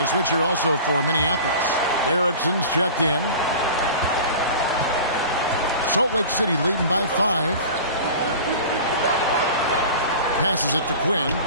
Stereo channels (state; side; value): inverted; both; correlation -0.37